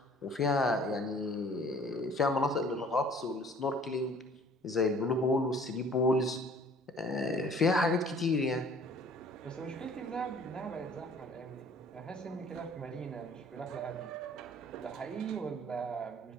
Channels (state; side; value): normal; both; correlation 0.53